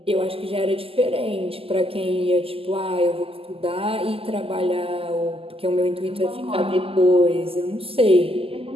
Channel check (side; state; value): left; late; 0.27 ms